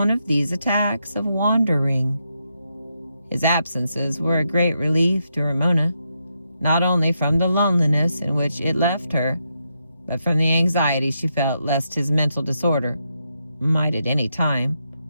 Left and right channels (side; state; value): both; inverted; correlation -0.82